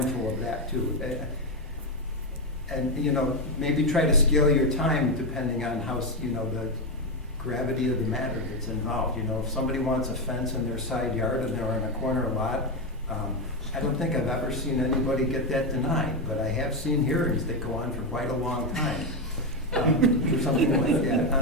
of that too. And, you know, maybe try to scale your time depending on how, you know, the gravity of the matter that's involved. You know, if somebody wants a fence in their side yard and they're in a corner lot, I don't think I've ever seen anybody get that denied, but I have seen hearings that go on for quite a long time. For something like that.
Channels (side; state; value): both; normal; correlation 0.08